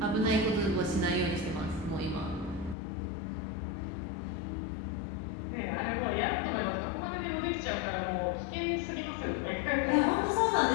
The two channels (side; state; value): right; drops out; at 2.8 s